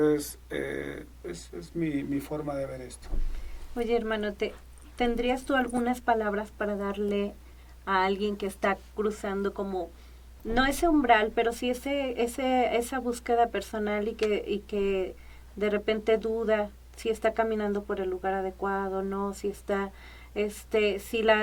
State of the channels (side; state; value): both; identical; correlation 1.00